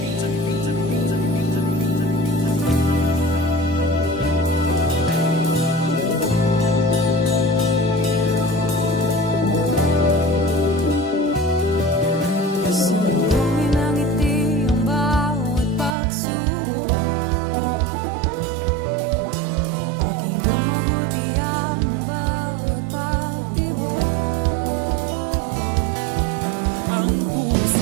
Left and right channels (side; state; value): left; drops out; at 16.0 s